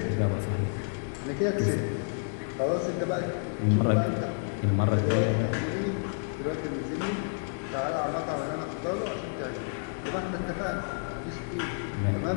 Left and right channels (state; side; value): silent; right; digital silence